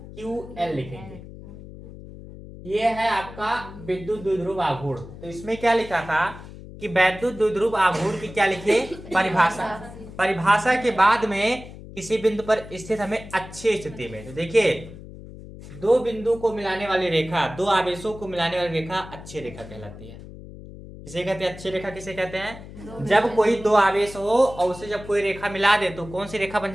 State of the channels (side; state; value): left; noise; hum, 15 dB below the sound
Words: लिखेंगे। ये है आपका विद्युत द्विध्रुव आघूर्ण। तो इसमें क्या लिखा था कि वैद्युत द्विध्रुव आघूर्ण की क्या लिखे परिभाषा। परिभाषा के बाद में किसी बिंदु पर स्थित हमें अच्छी स्थिति में, तो देखिए दो बिंदु को मिलाने वाली रेखा, दो आवेशों को मिलाने वाली रेखा अच्छी रेखा कहलाती है। किसे कहते हैं अच्छी रेखा, किसे कहते हैं जब कोई दो आवेश हो और उसे जब कोई रेखा मिला दे तो कौन सी रेखा बन